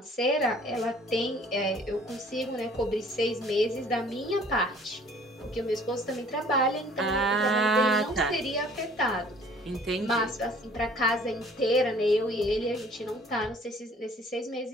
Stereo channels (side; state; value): both; normal; correlation 0.55